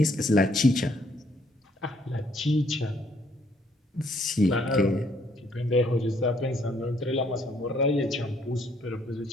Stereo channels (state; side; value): normal; both; correlation 0.67